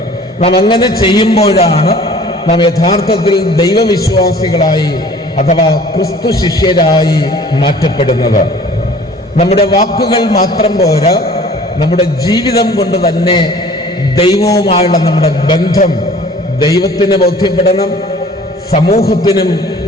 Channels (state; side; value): normal; both; correlation 0.49